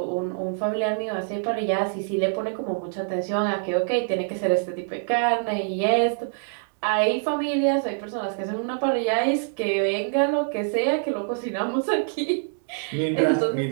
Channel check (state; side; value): silent; left; digital silence